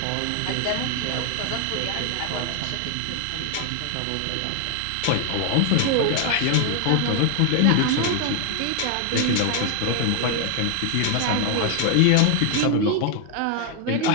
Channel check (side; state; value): both; different; correlation 0.00